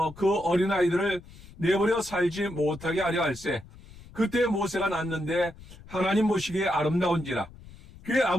그 어린아이들을 내버려 살지 못하게 하려 할세. 그때 모세가 낳았는데 하나님 보시기에 아름다운지라. 그의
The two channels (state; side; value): noise; left; rumble, 19 dB below the sound